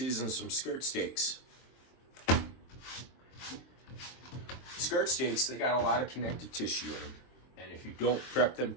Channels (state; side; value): late; right; 22 ms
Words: some skirt steaks. Skirt steaks, they got a lot of connective tissue in them. And if you don't prep them